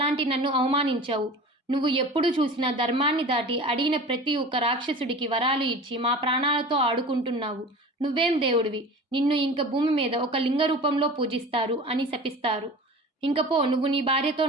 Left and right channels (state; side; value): normal; both; correlation 0.37